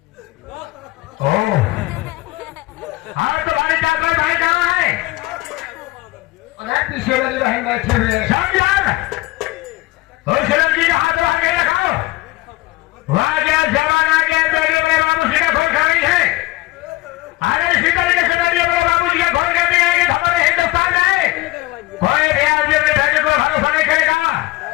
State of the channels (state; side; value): quieter; right; 19.9 dB